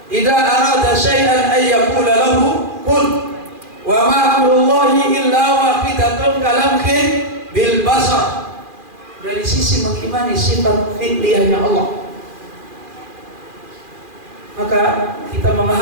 Idza arada syai'an ay yaqula lahu qul. Wa ma amrullahi illa wahidatun kalamhin bil basar. Dari sisi mengimani sifat fi'liyahnya Allah, maka kita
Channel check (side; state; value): left; late; 2.4 ms